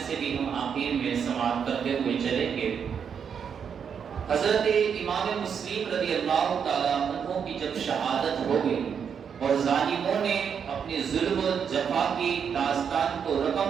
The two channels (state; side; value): quieter; left; 7.2 dB